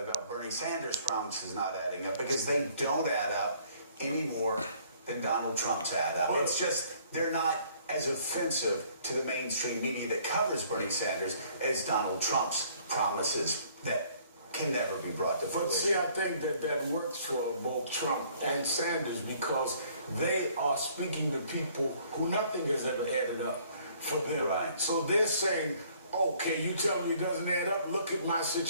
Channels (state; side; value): inverted; both; correlation -0.59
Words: Bernie Sanders' promises not adding up? Because they don't add up any more than Donald Trump's add up. It's just, they're not as offensive to the mainstream media that covers Bernie Sanders as Donald Trump's promises that can never be brought to fruition. But see, I think that works for both Trump and Sanders because they are speaking to people who nothing has ever added up for them. Right. So they're saying, okay, you tell me it doesn't add up. Look at my